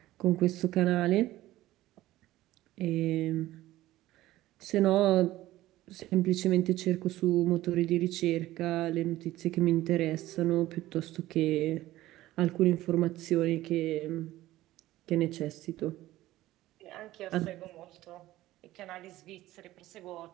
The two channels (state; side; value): quieter; left; 15.9 dB